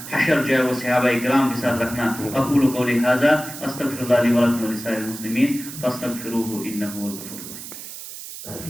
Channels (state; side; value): noise; right; hiss, 11 dB below the sound